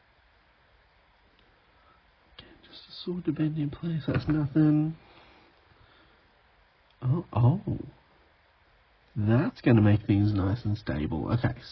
Sword to bend in place, that's nothing. Oh. That's going to make things nice and stable. Okay,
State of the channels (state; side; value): identical; both; correlation 1.00